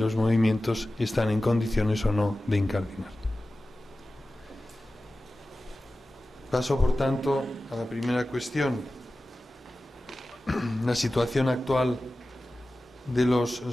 movimientos están en condiciones o no de incardinar. Paso, por tanto, a la primera cuestión, la situación actual de los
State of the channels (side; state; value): both; normal; correlation 0.95